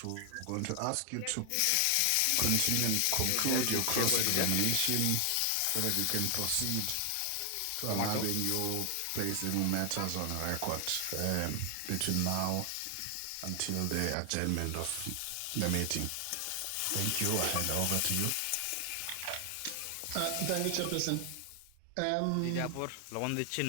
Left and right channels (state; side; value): different; both; correlation 0.00